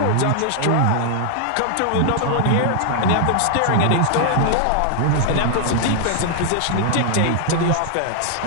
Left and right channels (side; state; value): both; different; correlation 0.00